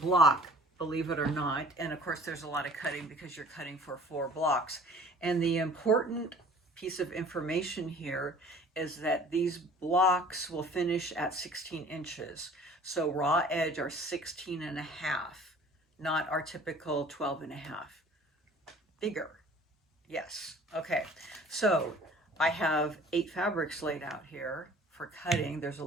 believe it or not. And of course, there's a lot of cutting because you're cutting for 4 blocks. And the important piece of information here is that these blocks will finish at 16 inches. So raw edge are 16 and a half, not our typical 12 and a half. Bigger. Yes. Okay. So I have 8 fabrics laid out here for cutting. There's a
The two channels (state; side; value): normal; both; correlation 0.49